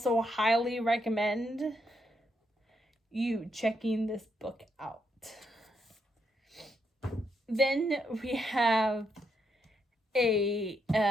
highly recommend you checking this book out. Then we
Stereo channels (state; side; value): normal; both; correlation 0.78